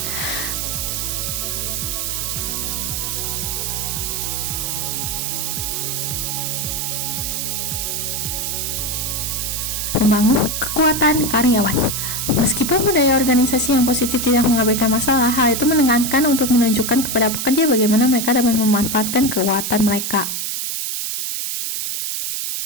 Membangun kekuatan karyawan. Meskipun budaya organisasi yang positif tidak mengabaikan masalah, hal itu menekankan untuk menunjukkan kepada pekerja bagaimana mereka dapat memanfaatkan kekuatan mereka.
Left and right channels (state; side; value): noise; right; hiss, 2 dB below the sound